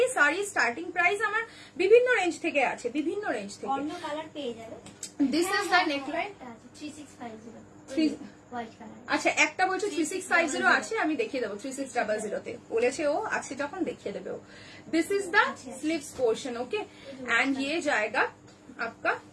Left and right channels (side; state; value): both; identical; correlation 1.00